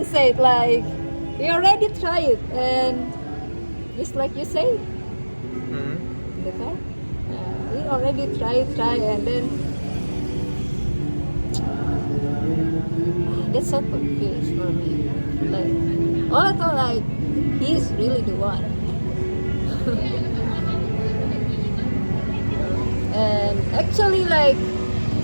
said like, we already tried, and just like you say, Mm-hmm. okay, we already try, and then that's so confused for me. Like, all I thought like he's really the one. And actually like,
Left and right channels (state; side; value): inverted; both; correlation -1.00